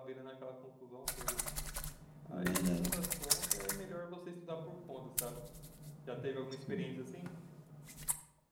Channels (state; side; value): identical; both; correlation 1.00